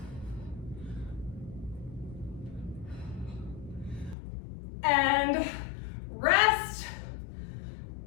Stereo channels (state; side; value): drops out; right; at 4.2 s